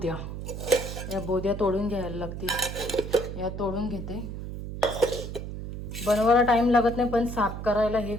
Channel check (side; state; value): right; noise; hum, 7 dB below the sound